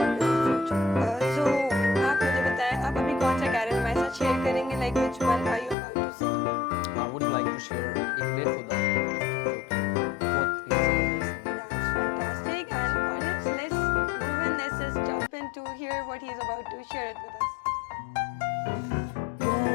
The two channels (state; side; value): drops out; right; at 5.8 s